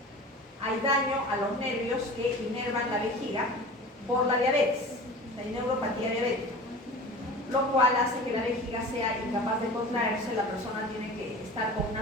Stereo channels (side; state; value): both; normal; correlation 0.37